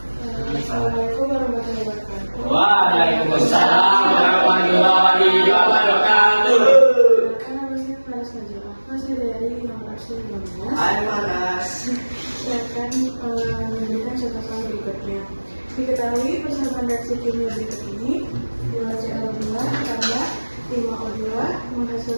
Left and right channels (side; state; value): both; inverted; correlation -1.00